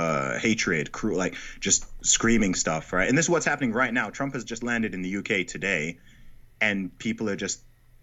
hatred, like just screaming stuff, right? And this is what's happening right now. Trump has just landed in the UK today, and people are just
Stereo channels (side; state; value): both; identical; correlation 1.00